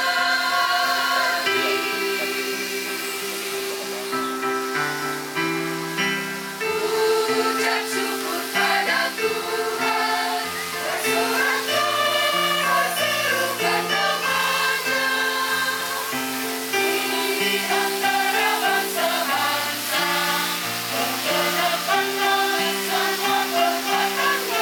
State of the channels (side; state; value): both; identical; correlation 1.00